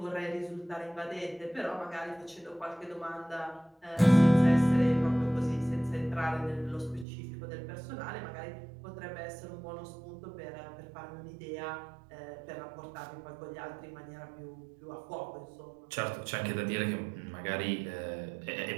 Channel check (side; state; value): left; drops out; at 7.1 s